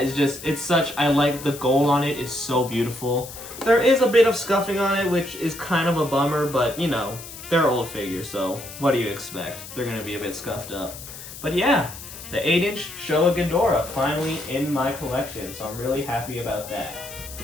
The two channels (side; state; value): left; noise; hiss, 13 dB below the sound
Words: I like the gold on it is so beautiful. There is a bit of scuffing on it, which is kind of a bummer, but you know, they're old figures, so what do you expect? They're gonna be a bit scuffed up. But yeah, the 8-inch Showa Ghidorah finally in my collection, so I'm really happy about that.